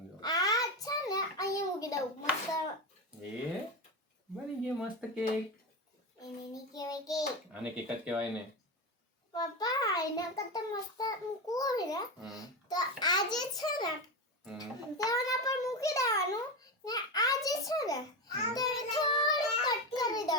આ છે ને અહીંયા મૂકી દઉં મસ્ત. એ બની ગયો મસ્ત કેક. એને ની કહેવાય કેક. આને કેક જ કહેવાય ને. પપ્પા એના કરતા મસ્ત મૂકવું હોય ને તો આ જે છે ને તેના પર મૂકી દેવાનું ને આ જે છે ને તેને થોડું કટ કરી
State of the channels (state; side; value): normal; both; correlation 0.17